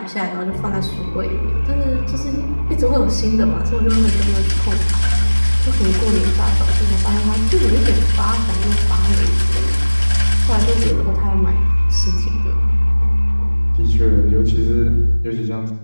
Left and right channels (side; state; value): both; inverted; correlation -1.00